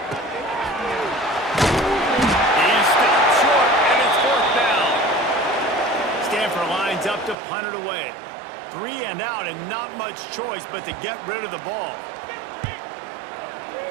stopped short, and it's fourth down. Stanford lines up to punt it away. 3 and out, and not much choice but to get rid of the ball.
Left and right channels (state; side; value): drops out; left; at 7.4 s